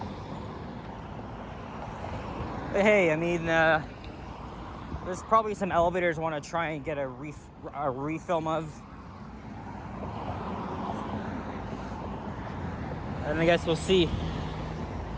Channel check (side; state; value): both; identical; correlation 1.00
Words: But hey, there's probably some elevators I want to try and get a refilm of. And I guess we'll see.